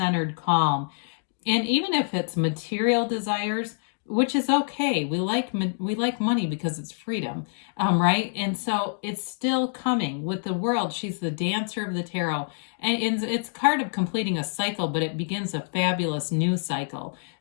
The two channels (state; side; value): silent; right; digital silence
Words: calm. And even if it's material desires, which is okay. We like money because it's freedom, right? And so it's still coming with the World. She's the dancer of the tarot. And it's a card of completing a cycle, but it begins a fabulous new cycle.